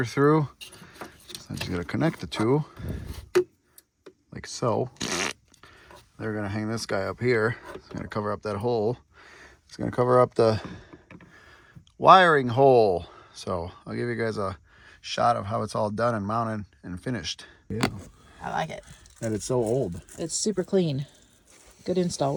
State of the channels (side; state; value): both; identical; correlation 1.00